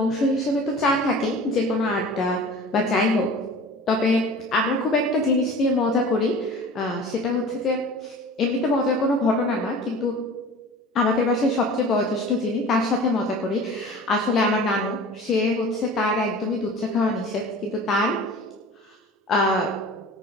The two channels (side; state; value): both; normal; correlation 0.40